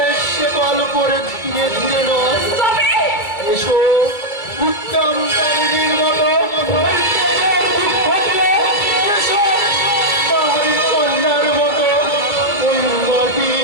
শেকল করে ধীরে ধীরে নয়, তবে এসো উত্তম দামিনীর মতো নৈত্যের দুঃখ দিয়ে, এসো পাহাড়ি কন্যার মতো ওই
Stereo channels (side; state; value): right; late; 2.3 ms